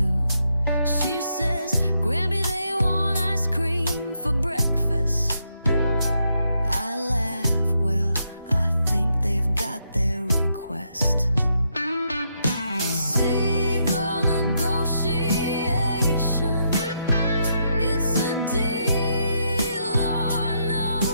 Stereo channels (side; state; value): both; inverted; correlation -0.78